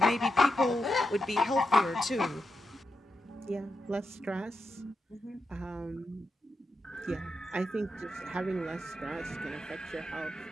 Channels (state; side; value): normal; both; correlation 0.86